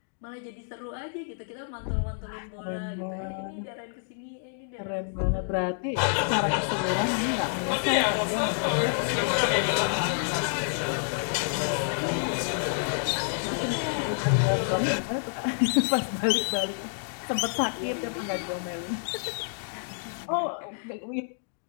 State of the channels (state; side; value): silent; right; digital silence